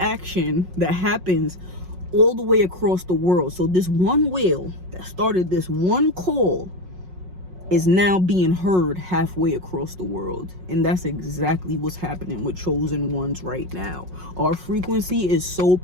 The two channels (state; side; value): late; left; 5.5 ms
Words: that happens all the way across the world. So this one whale that started this one call is now being heard halfway across the world. And that's exactly what's happening with chosen ones right now. Our frequency is so